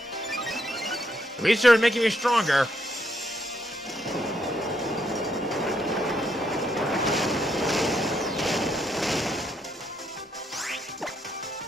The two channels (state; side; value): normal; both; correlation 0.76